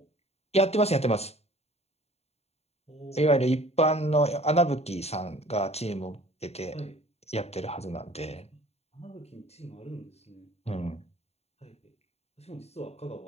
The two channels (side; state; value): right; late; 0.30 ms